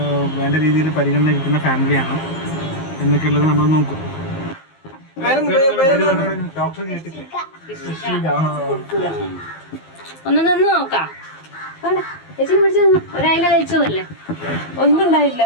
വേണ്ട രീതിയിൽ പരിഗണന കിട്ടുന്ന ഫാമിലിയാണ് എന്നൊക്കെയുള്ളത് നമ്മൾ നോക്കും. ഡോക്ടർ കേട്ടില്ലേ? ഒന്ന് നിന്ന് നോക്കാം. ഒരായില കഴിച്ചതല്ലേ? ഒന്നും ഉണ്ടായില്ല.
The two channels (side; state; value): right; late; 19 ms